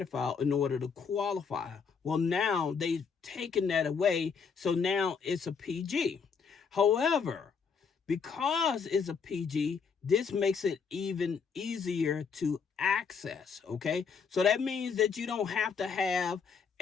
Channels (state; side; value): quieter; right; 5.9 dB